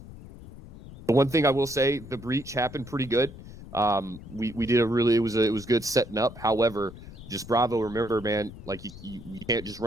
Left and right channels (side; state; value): left; noise; rumble, 16 dB below the sound